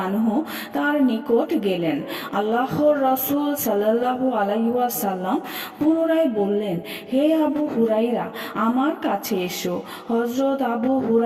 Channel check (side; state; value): both; identical; correlation 1.00